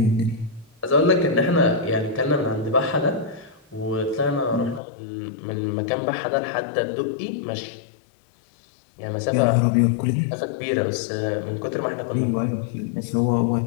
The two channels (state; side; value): drops out; right; at 4.8 s